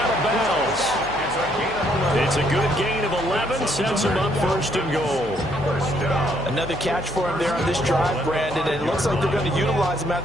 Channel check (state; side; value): noise; left; hum, 17 dB below the sound